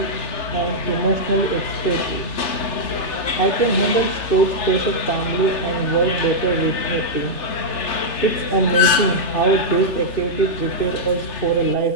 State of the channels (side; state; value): right; late; 3.3 ms